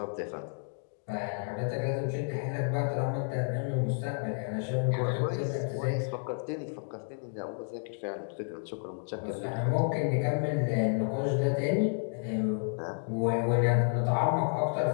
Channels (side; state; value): right; silent; 57 dB below the other